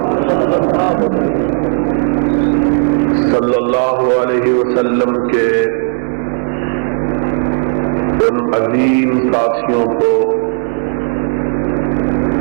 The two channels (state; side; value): silent; left; 60 dB below the other